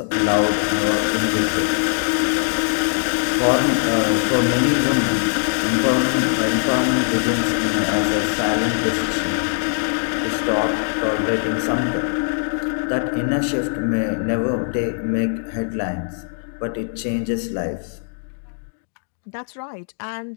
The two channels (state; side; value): silent; right; digital silence